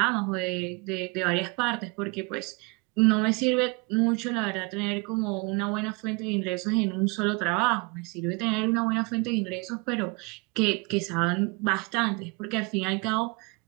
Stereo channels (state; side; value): quieter; left; 29.1 dB